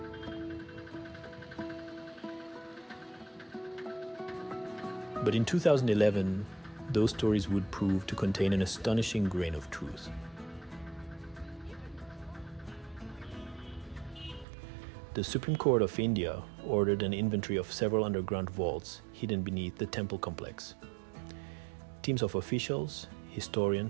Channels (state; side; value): drops out; left; at 14.5 s